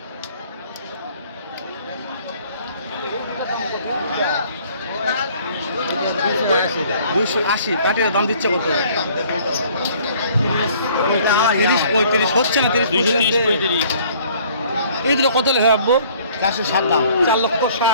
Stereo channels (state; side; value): inverted; both; correlation -0.56